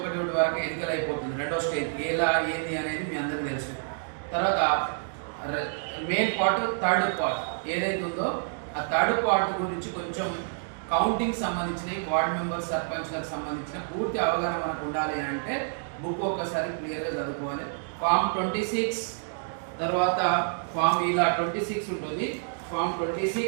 వరకు ఎన్నికలు అయిపోతుంది. రెండో స్టేజ్ ఎలా ఏంది అనేది మీ అందరికీ తెలుసు. తర్వాత మెయిన్ పార్ట్, థర్డ్ పార్ట్ ఏదైతే ఉందో ఆ థర్డ్ పార్ట్ గురించి కొంచెం కౌంటింగ్ సంబంధించిన వార్డ్ మెంబర్ సర్పంచ్లకు సంబంధించిన పూర్తి అవగాహన మనకు ఉండాలి అంటే బుక్ ఒక్కసారి క్లియర్గా చదువుకోవాలి. ఫామ్ 26 తర్వాత ఫామ్ ఇలా 26 ఉంటుంది. ఫామ్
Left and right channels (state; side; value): silent; left; digital silence